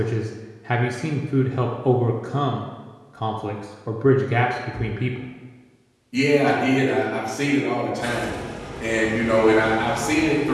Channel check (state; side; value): identical; both; correlation 1.00